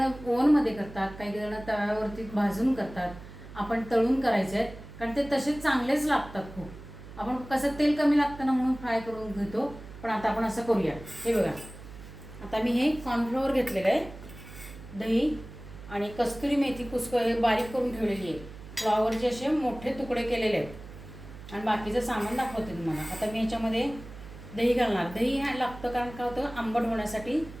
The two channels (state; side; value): noise; right; hum, 15 dB below the sound